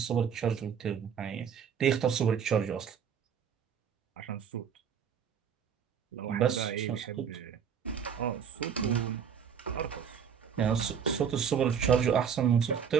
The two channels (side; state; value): left; quieter; 7.6 dB